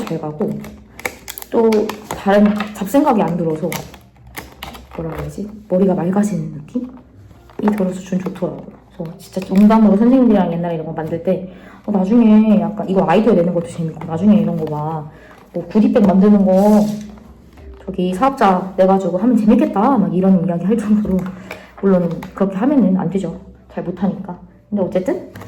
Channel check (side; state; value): both; identical; correlation 1.00